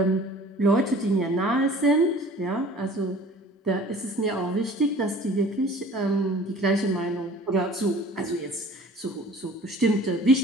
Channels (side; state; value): both; normal; correlation 0.47